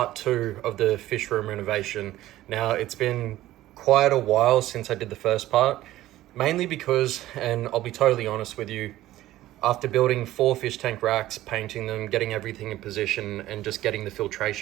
2 of the fish room renovation. Now it's been quite a while since I did the first part, mainly because, and I'll be totally honest with you, after building 4 fish tank racks, painting them, getting everything in position and just getting the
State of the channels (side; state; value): left; quieter; 15.1 dB